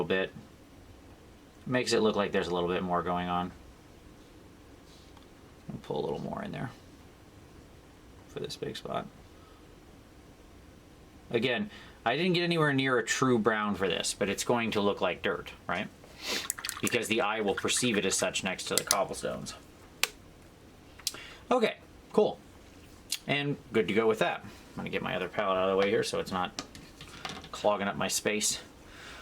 bit. Makes it look like there's a little bit more going on. I'll pull a little more in there for this big spot. Again, I didn't get anywhere near a true brown for this, but it's going to look like dirt, right? Because the eye will perceive it as such next to the cobblestones. Okay, cool. And good to go with that. I'm gonna get my other palette out of the way here so it's not clogging up my space.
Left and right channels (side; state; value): both; identical; correlation 1.00